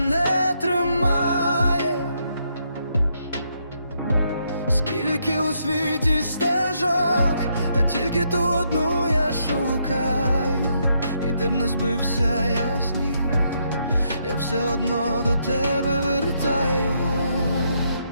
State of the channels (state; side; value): inverted; both; correlation -0.76